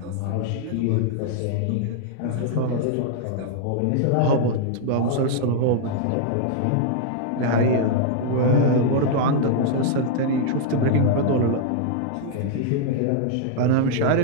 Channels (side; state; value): both; different; correlation -0.01